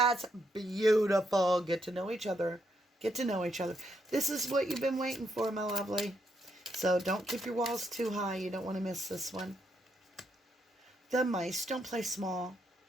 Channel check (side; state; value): both; normal; correlation 0.77